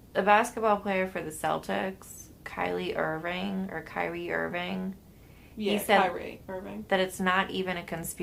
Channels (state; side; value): identical; both; correlation 1.00